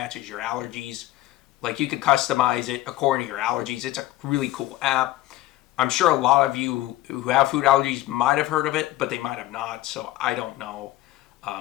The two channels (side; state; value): right; quieter; 16.3 dB